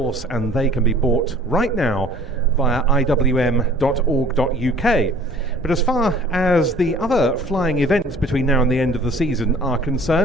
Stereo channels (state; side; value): normal; both; correlation 0.51